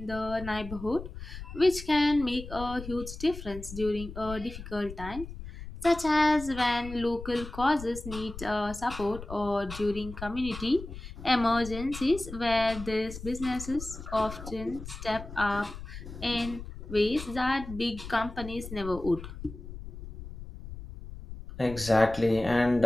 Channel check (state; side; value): noise; left; rumble, 11 dB below the sound